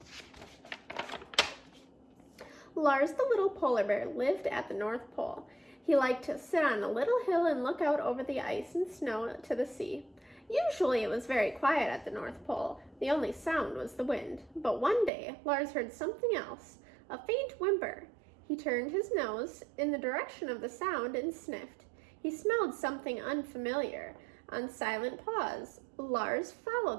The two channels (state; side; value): drops out; left; at 15.1 s